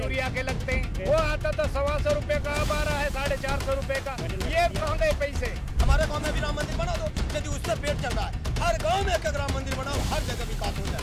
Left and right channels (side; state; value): both; identical; correlation 1.00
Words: के लगते हैं, वो आता था 125 रुपए का, अब आ रहा है 450 रुपए का। ये कहाँ गए पैसे? हमारे गांव में भी राम मंदिर बना दो, यदि उससे पेट चल रहा है। हर गांव में एक राम मंदिर बनाओ, हर जगह विकास हो